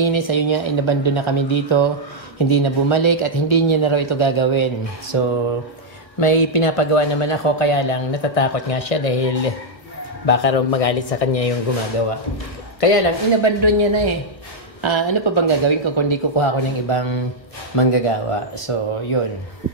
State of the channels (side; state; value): right; late; 1.4 ms